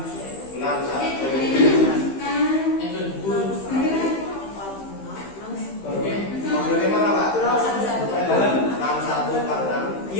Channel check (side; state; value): right; late; 15 ms